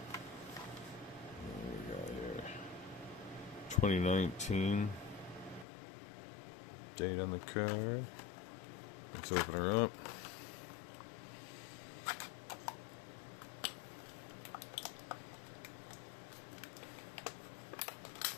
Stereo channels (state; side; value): drops out; right; at 5.7 s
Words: What do we got here? 2019. Date on the car. Let's open her up.